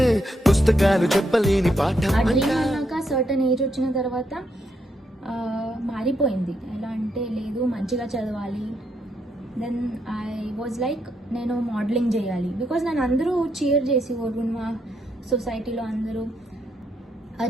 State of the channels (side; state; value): both; normal; correlation 0.78